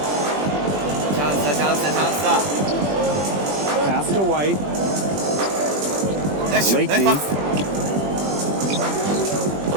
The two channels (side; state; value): left; late; 20 ms